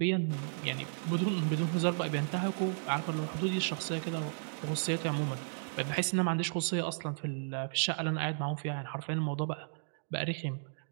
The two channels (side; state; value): left; silent; digital silence